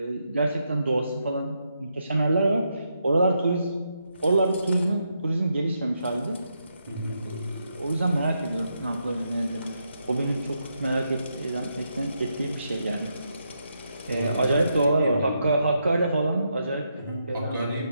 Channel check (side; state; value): both; inverted; correlation -0.81